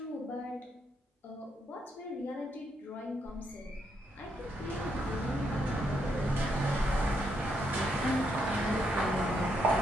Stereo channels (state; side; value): normal; both; correlation 0.77